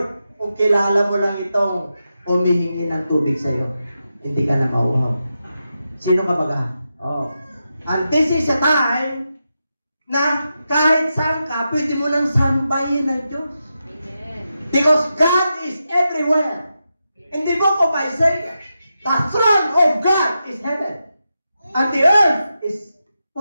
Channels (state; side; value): inverted; both; correlation -0.88